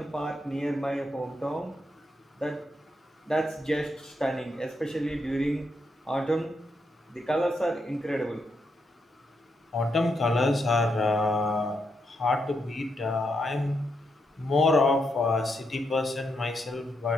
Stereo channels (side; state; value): both; normal; correlation 0.80